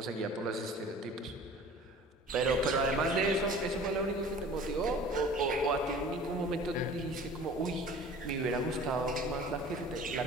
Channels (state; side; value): normal; both; correlation 0.44